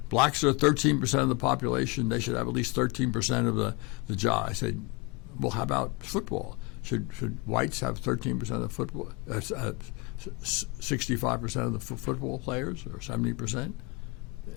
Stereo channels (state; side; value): quieter; right; 26.3 dB